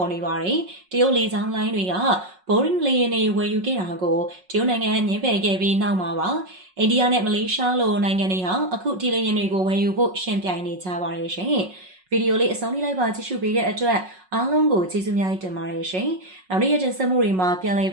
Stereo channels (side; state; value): left; late; 5.4 ms